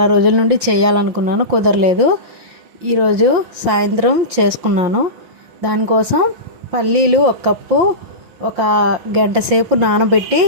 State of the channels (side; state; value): left; late; 5.7 ms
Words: రోజుల నుండి చేయాలనుకున్నాను, కుదరలేదు. ఈరోజు సాయంత్రం చేసుకున్నాను. దానికోసం పల్లీలు ఒక కప్పు ఒక గంట సేపు నానబెట్టి